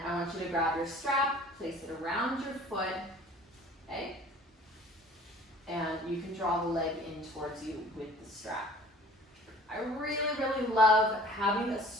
I want you to grab your strap, place it around your foot, okay? And you can draw the leg in towards you with the strap. I really, really love having a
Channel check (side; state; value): both; normal; correlation 0.47